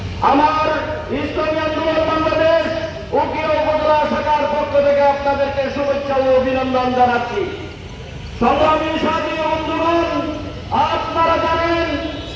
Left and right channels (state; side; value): identical; both; correlation 1.00